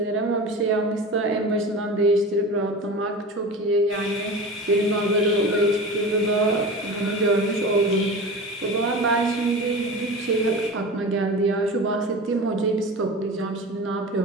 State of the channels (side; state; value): both; normal; correlation 0.32